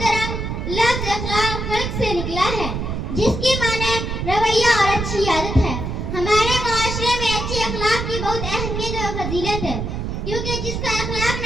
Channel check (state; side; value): noise; right; rumble, 3 dB below the sound